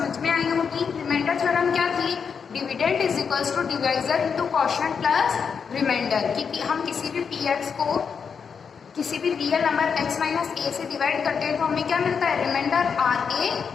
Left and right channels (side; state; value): right; quieter; 6.3 dB